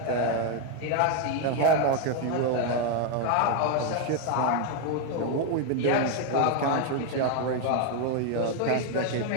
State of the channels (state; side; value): different; both; correlation 0.01